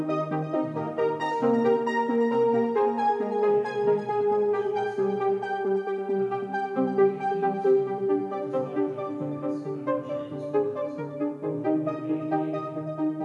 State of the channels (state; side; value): identical; both; correlation 1.00